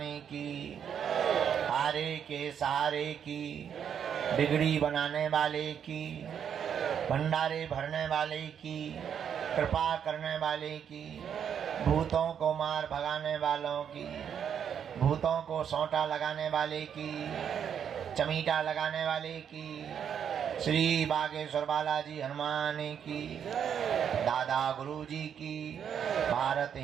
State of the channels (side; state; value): left; quieter; 8.2 dB